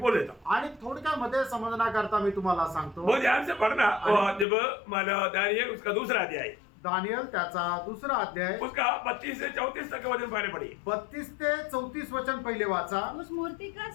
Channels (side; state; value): right; drops out; at 4.5 s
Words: देता हूँ। आणि थोडक्यामध्ये समजण्याकरता मी तुम्हाला सांगतो. बहुत ध्यान से पढ़ना। जब माना दानियल उसका दूसरा अध्याय, दानियल त्याचा 2 अध्याय उसका 32 से 34 तक का वचन पहले पढ़िए। 32 ते 34 वचन पहिले वाचा. उस मूर्ति का